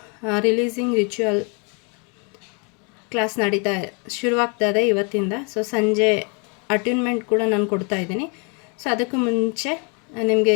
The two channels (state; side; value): quieter; right; 35.2 dB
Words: ರಿಲೀಸಿಂಗ್ ರಿಚುವಲ್ ಕ್ಲಾಸ್ ಶುರುವಾಗ್ತಾ ಇದೆ ಇವತ್ತಿಂದ. ಸೊ ಸಂಜೆ ಅಟ್ಯೂನ್ಮೆಂಟ್ ಕೂಡ ನಾನು ಕೊಡ್ತಾ ಇದ್ದೀನಿ. ಸೊ ಅದಕ್ಕೂ ಮುಂಚೆ ನಿಮಗೆ